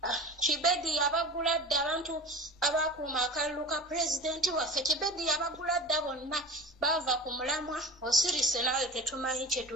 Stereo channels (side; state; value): both; normal; correlation 0.33